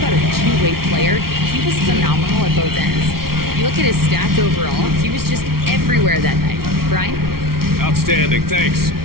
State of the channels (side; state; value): left; late; 0.94 ms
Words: a two-way player. He was phenomenal at both ends. You look at his stats overall, he was just everywhere that night. Brian? Outstanding, thanks.